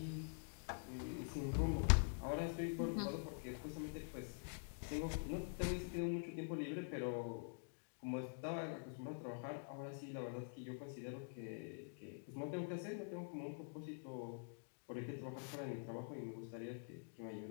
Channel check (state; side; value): silent; right; digital silence